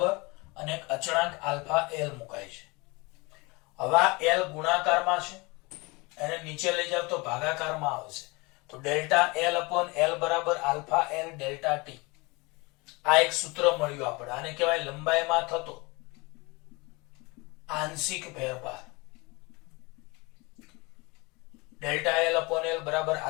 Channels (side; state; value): right; quieter; 25.9 dB